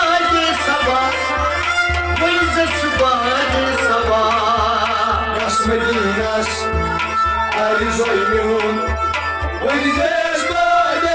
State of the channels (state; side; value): identical; both; correlation 1.00